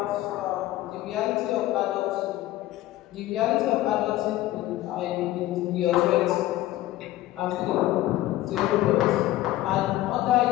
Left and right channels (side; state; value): right; quieter; 15.7 dB